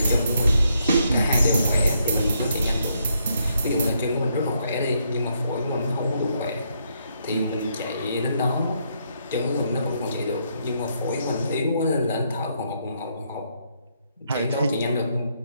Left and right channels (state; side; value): inverted; both; correlation -0.75